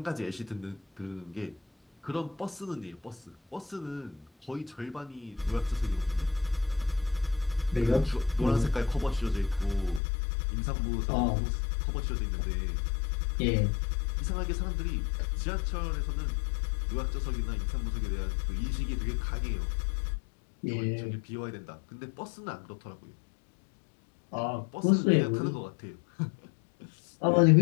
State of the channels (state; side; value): drops out; right; at 10.0 s